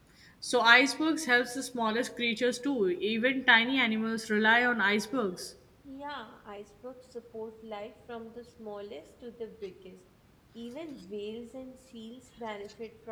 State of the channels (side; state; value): both; identical; correlation 1.00